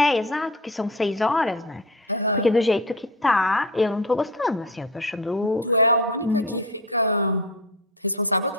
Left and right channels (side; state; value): both; normal; correlation 0.28